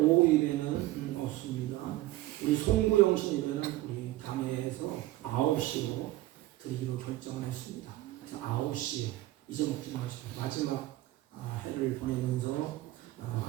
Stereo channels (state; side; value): quieter; left; 16.8 dB